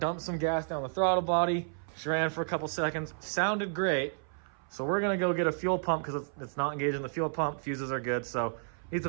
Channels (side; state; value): left; silent; 57 dB below the other